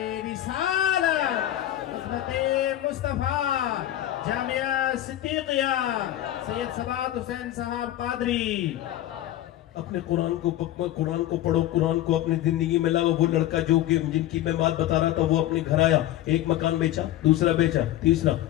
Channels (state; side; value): quieter; right; 13.5 dB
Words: رسالت، عظمت مصطفیٰ، جامعہ صدیقیہ، سید سبات حسین صاحب قادری۔ اپنے قرآن کو پڑھو، قرآن کو اپنی زندگی میں لاؤ۔ وہ لڑکا جو کہ جن کی میں بات بتا رہا تھا، وہ اپنے گھر آیا، ایک مکان بیچا، دوسرا بیچا، تیسرا،